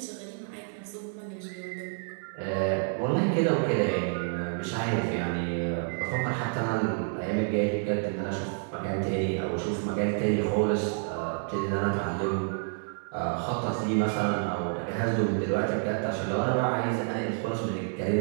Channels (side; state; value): left; silent; 59 dB below the other